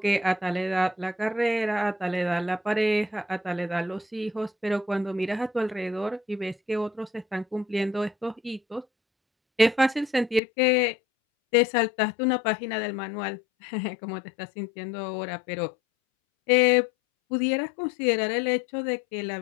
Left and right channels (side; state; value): right; drops out; at 10.4 s